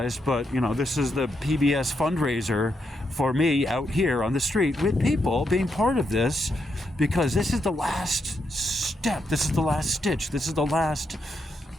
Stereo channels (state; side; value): normal; both; correlation 0.81